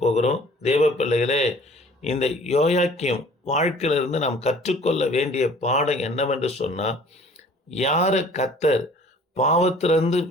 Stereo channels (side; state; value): both; normal; correlation 0.51